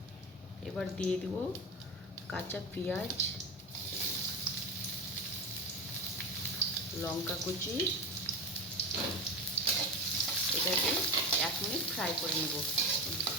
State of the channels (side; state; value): both; normal; correlation 0.21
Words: এবার দিয়ে দেব কাঁচা পেঁয়াজ, লঙ্কা কুচি। এটাকে 1 মিনিট ফ্রাই করে নেব।